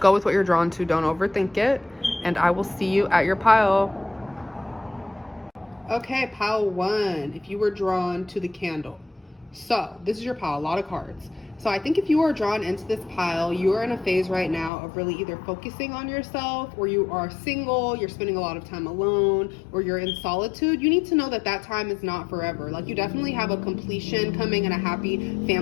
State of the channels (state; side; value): drops out; right; at 14.7 s